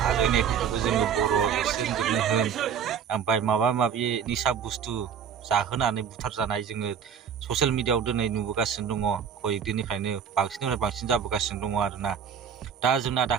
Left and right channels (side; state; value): left; quieter; 7.6 dB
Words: आरो होनायफोरखौबो जोङो बर' एक्सिडेन्टजोंनो होन ओमफ्राय माबा माबि निसा बुस्थु जाहोनानै बुथारजानाय जोङो ससियेल मिडियाआव दिनै नुबोगासिनो दङ कय दिननिफ्रायनो बांसिननिफ्राय बांसिन जाबोगासिनो दङ आरोना दा जोंना